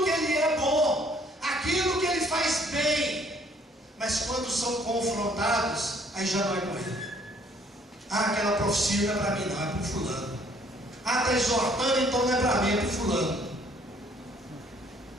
que Ele é bom, aquilo que Ele faz bem, mas quando são confrontados, aí já não é com Ele. Aquela profecia não é para mim, não, é para o fulano. Está exortando, então não é para mim, é para o fulano.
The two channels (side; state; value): both; normal; correlation 0.61